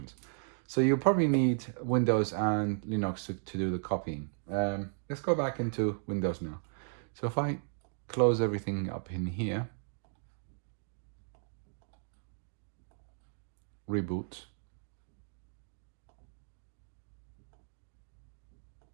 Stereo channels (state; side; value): silent; left; digital silence